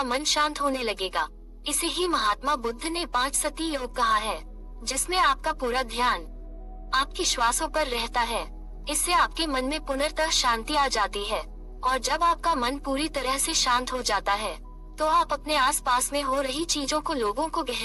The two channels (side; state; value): both; identical; correlation 1.00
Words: मन शांत होने लगेगा। इसे ही महात्मा बुद्ध ने 5 सती योग कहा है, जिसमें आपका पूरा ध्यान आपकी श्वासों पर रहता है। इससे आपके मन में पुनर्तः शांति आ जाती है, और जब आपका मन पूरी तरह से शांत हो जाता है, तो आप अपने आसपास में हो रही चीजों को, लोगों को